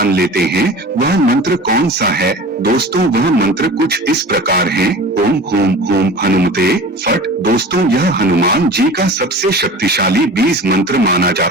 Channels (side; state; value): both; normal; correlation 0.37